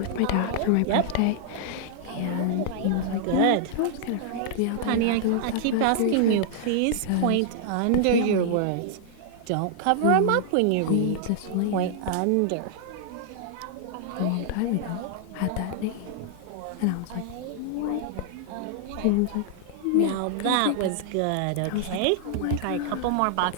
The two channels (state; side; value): different; both; correlation -0.01